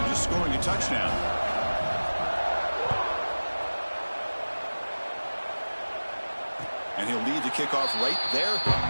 just scoring a touchdown. And he'll lead the kickoff right there.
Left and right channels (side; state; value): both; inverted; correlation -1.00